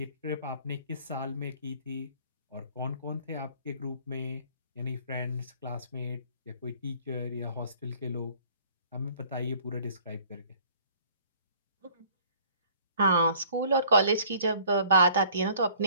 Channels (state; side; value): inverted; both; correlation -0.55